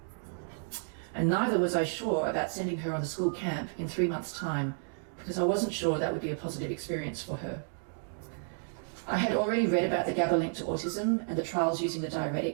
And neither was I sure about sending her on the school camp in 3 months' time because I wasn't sure that would be a positive experience for her. I had already read about the GABA link to autism and the trials using the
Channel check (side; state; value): left; silent; digital silence